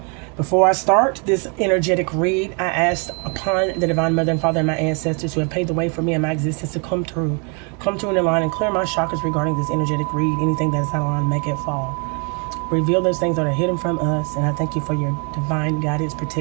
Before I start this energetic read, I asked upon the Divine Mother and Father and my ancestors who have paved the way for me and my existence to come through in line and clear my chakras regarding this energetic read. Anything that is not aligned, make it fall. Reveal those things that are hidden from us, and I thank you for your divine guidance,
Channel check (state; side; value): quieter; left; 35.5 dB